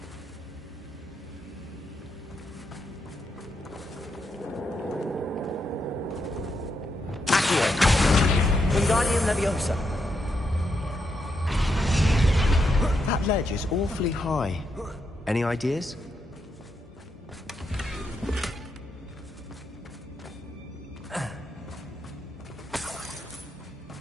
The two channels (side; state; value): both; normal; correlation 0.81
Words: Wingardium Leviosa. That ledge is awfully high. Any ideas?